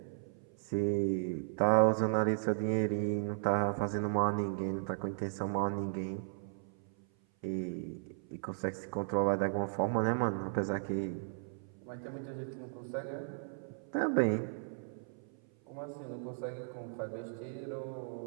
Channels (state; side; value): silent; left; 54 dB below the other